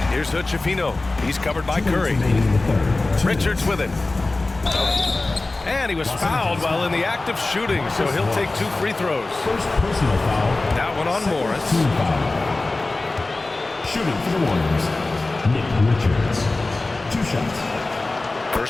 Here's Hood-Schifino. He's covered by Curry. Richards with it. And he was fouled while in the act of shooting, so he'll take 2 free throws. First personal foul. That one on Morris. Shooting for the Warriors, Nick Richards. 2 shots.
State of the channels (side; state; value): right; quieter; 3.2 dB